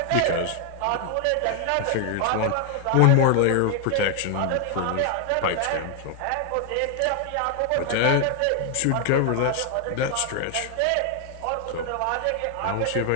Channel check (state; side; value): different; both; correlation 0.00